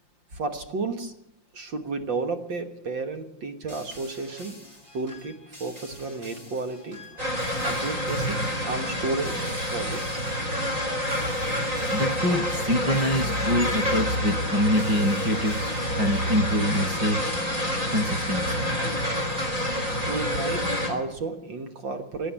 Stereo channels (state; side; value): late; left; 5.7 ms